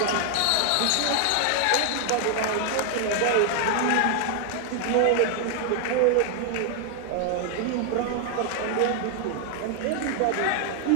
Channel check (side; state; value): both; different; correlation 0.00